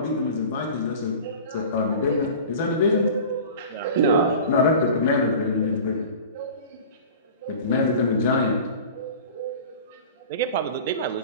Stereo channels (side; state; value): both; inverted; correlation -0.38